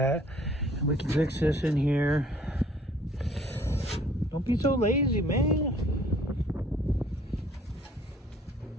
We can fix this in here. Don't be so lazy, man.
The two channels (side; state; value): both; normal; correlation 0.57